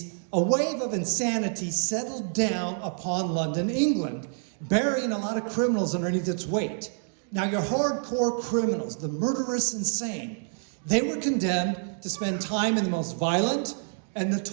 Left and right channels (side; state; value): left; silent; 58 dB below the other